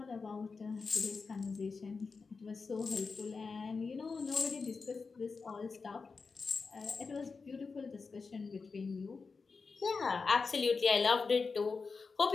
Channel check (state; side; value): quieter; right; 4.6 dB